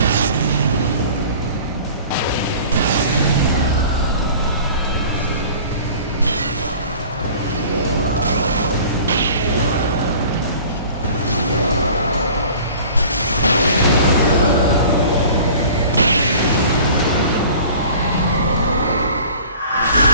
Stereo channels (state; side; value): inverted; both; correlation -0.45